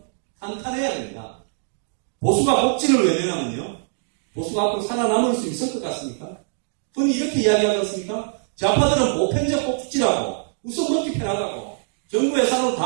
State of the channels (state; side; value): silent; left; digital silence